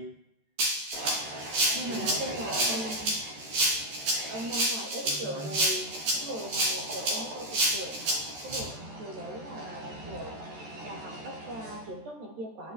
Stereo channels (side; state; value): left; late; 13 ms